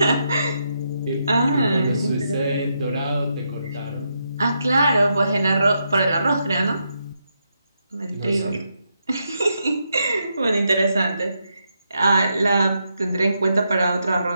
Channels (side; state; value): both; inverted; correlation -0.82